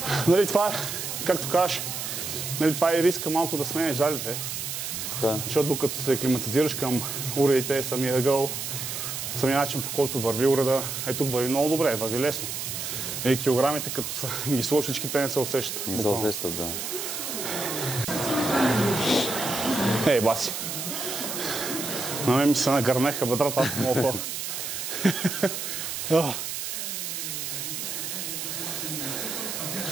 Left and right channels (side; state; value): right; noise; hiss, 4 dB below the sound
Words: Нали, това е, както кажеш, нали, това е риска малко да сменеш залите. Така. Защото докато се климатизираш към уредите, самия ъгъл, самия начин, по който върви уреда, тук върви много добре, върви лесно. И килограмите, като са ги сложиш, всички те не се усещат. Не се усещат, да. Ей, баси. На мен ми се нагърнеха бедрата, аз не мога.